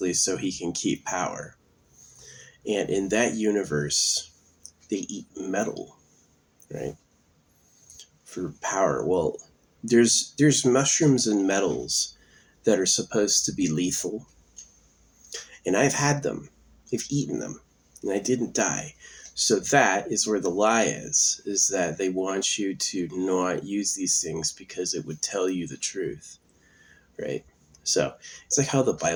so he can keep power. And in that universe, they eat metal, right? For power. Well, there's mushrooms and metals that are supposed to be lethal. And I've had them. I've eaten them. And I didn't die. So that is where the lie is that they want you to not use these things because it would tell you the truth, right? So it's like how the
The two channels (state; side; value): identical; both; correlation 1.00